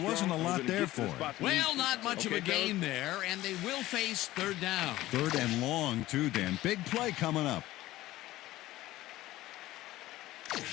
a lot there for him. Well, not much of a gain there, and they will face 3rd down. 3rd and long, too, Dan. Big play coming up. Come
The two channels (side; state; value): right; quieter; 16.3 dB